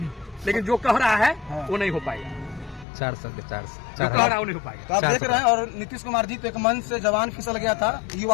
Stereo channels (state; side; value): drops out; right; at 2.9 s